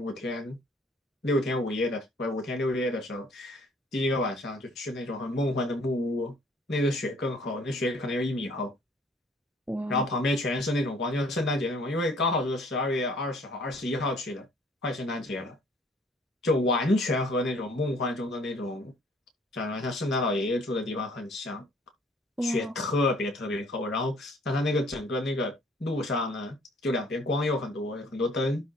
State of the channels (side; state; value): both; normal; correlation 0.58